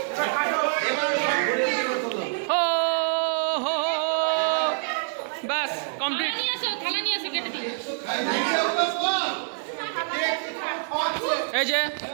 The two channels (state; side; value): silent; left; digital silence